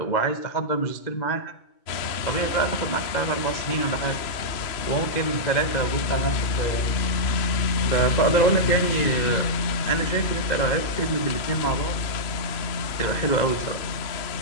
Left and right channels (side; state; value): right; late; 3.0 ms